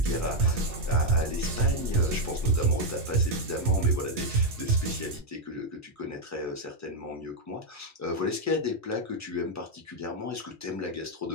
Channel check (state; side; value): normal; both; correlation 0.01